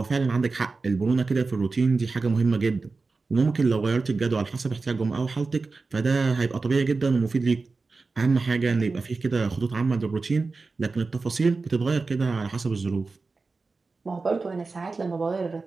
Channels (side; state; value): left; quieter; 4.0 dB